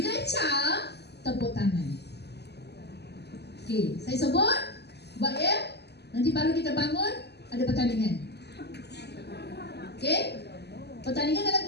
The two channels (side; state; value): right; late; 0.49 ms